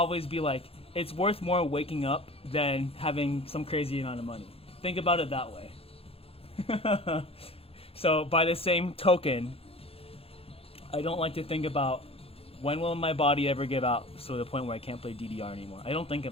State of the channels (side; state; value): right; late; 0.28 ms